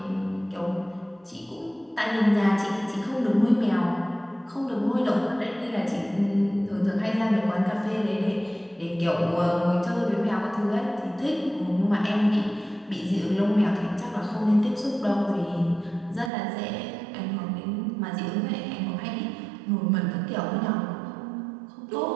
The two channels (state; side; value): drops out; left; at 16.3 s